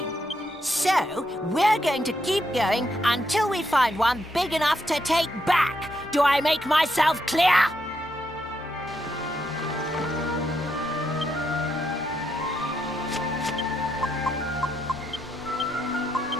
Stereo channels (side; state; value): both; normal; correlation 0.79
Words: So, we're going to keep going until we find one big enough to take back. Do I make myself clear?